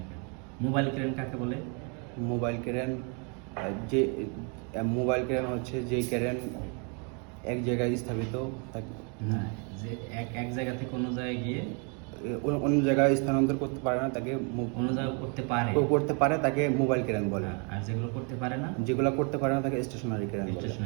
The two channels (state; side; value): quieter; left; 36.4 dB